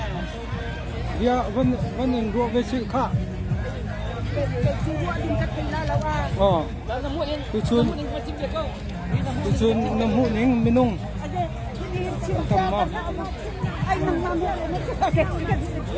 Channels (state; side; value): identical; both; correlation 1.00